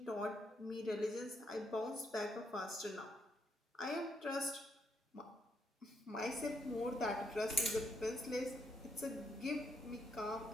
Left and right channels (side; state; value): both; normal; correlation 0.76